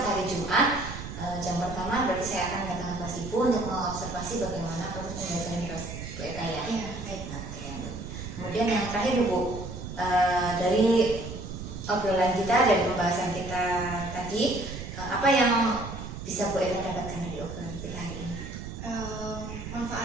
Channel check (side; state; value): right; noise; rumble, 9 dB below the sound